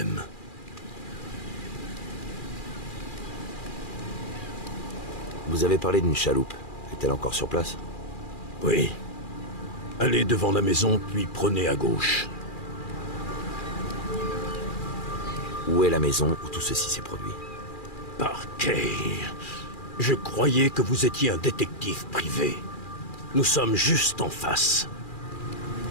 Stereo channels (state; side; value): late; right; 2.4 ms